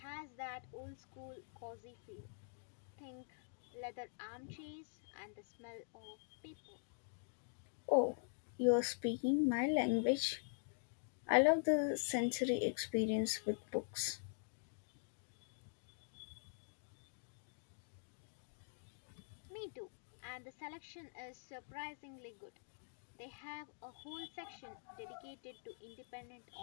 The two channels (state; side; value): silent; right; digital silence